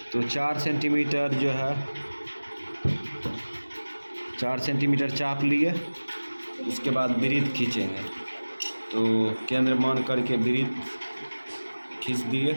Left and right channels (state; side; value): inverted; both; correlation -1.00